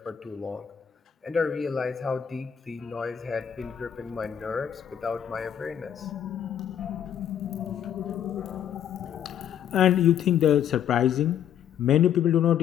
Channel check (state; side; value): quieter; right; 9.3 dB